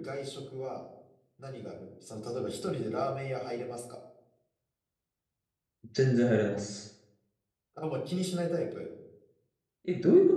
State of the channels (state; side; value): identical; both; correlation 1.00